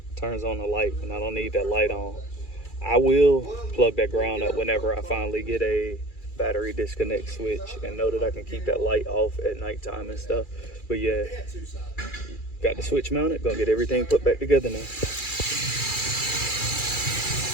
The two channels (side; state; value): right; late; 2.4 ms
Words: it turns on the light, and I don't need that light on. I will plug that ground up whenever I finally get a battery disconnect switch and know that I can keep that light off at nighttime and stuff. But yeah, got the switch mounted, gonna get everything put back together now.